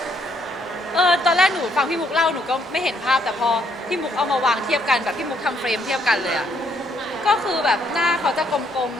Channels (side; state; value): both; normal; correlation 0.70